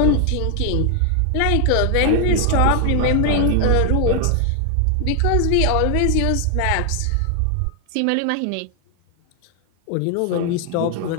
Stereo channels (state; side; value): different; both; correlation 0.00